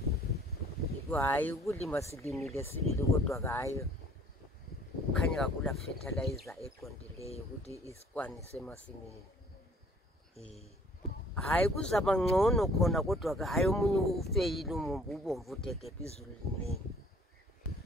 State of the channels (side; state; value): both; normal; correlation 0.56